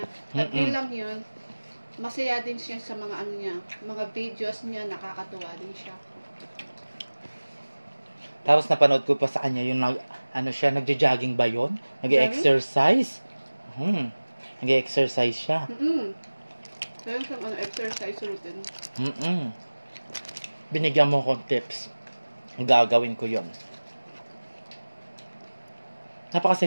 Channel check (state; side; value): inverted; both; correlation -1.00